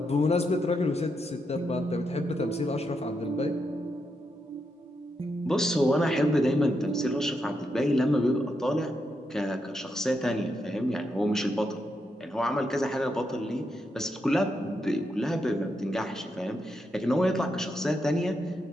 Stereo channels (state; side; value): normal; both; correlation 0.82